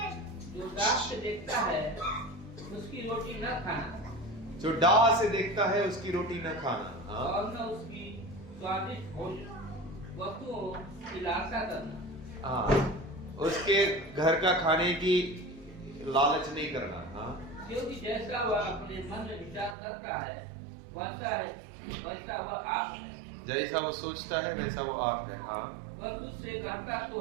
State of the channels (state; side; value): drops out; left; at 19.8 s